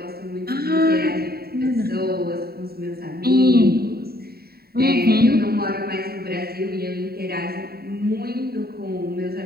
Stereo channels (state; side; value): late; left; 0.45 ms